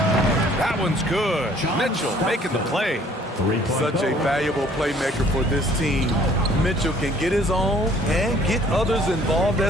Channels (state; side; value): normal; both; correlation 0.58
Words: one's good. Mitchell making the play. Such a valuable playmaker for this team. Mitchell can get his own and get others involved